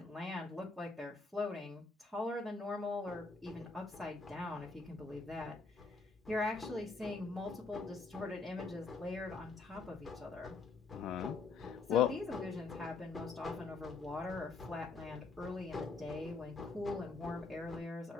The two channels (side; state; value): right; quieter; 4.1 dB